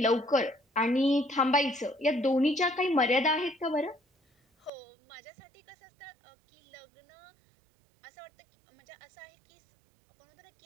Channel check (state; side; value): drops out; left; at 4.7 s